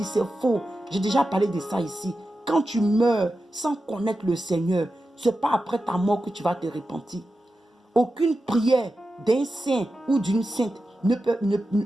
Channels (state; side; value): normal; both; correlation 0.91